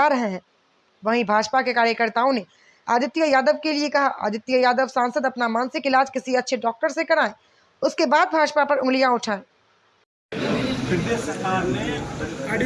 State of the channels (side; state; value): both; identical; correlation 1.00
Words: रहे हैं। वहीं भाजपा के कार्यकर्ताओं ने आदित्य यादव के लिए कहा, आदित्य यादव सांसद अपना मानसिक इलाज किसी अच्छे डॉक्टर से कराएं, उसके बाद भाजपा पर उंगलियां उठाएं। प्रदेश सरकार ने